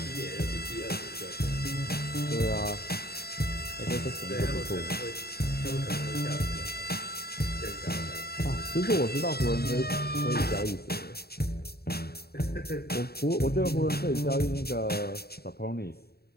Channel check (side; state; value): right; late; 0.46 ms